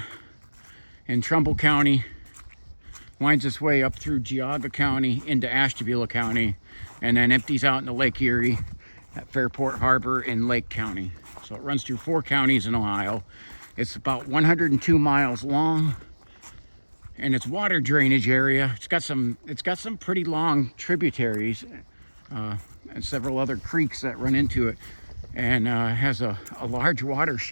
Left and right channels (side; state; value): both; inverted; correlation -1.00